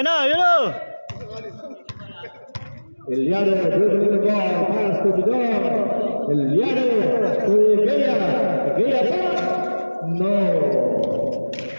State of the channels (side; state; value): both; inverted; correlation -1.00